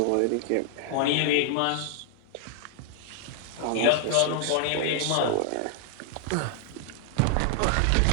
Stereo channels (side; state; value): both; different; correlation 0.00